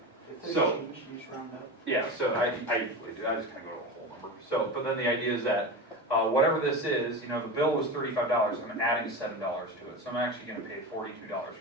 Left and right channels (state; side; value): normal; both; correlation 0.24